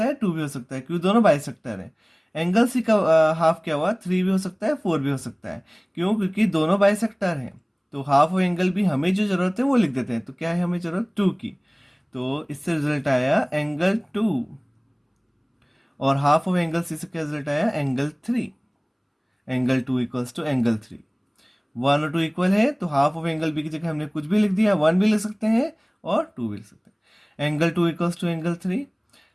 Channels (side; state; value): both; identical; correlation 1.00